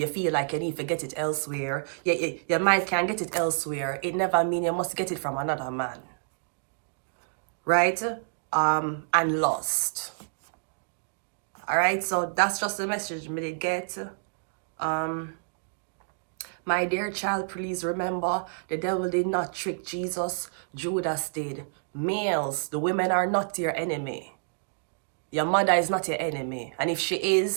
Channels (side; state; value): left; silent; digital silence